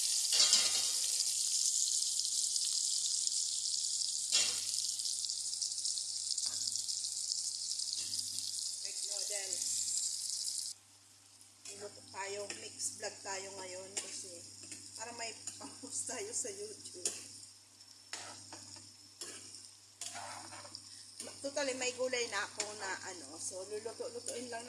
Egg noodles. Luto tayo, mix vlog tayo ngayon kasi para may pang-post tayo sa YouTube. Totally may gulay na ako na so luluto-lutuin lang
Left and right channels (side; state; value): both; identical; correlation 1.00